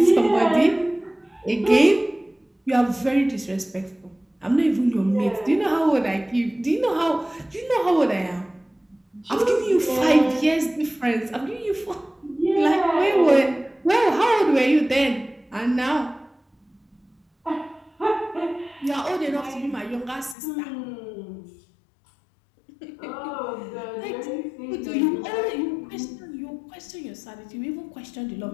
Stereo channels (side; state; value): right; drops out; at 20.4 s